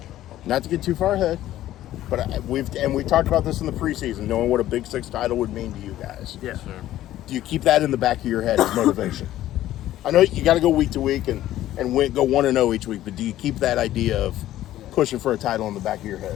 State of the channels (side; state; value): right; quieter; 13.7 dB